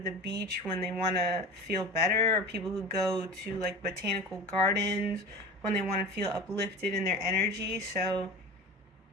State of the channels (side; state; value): both; normal; correlation 0.33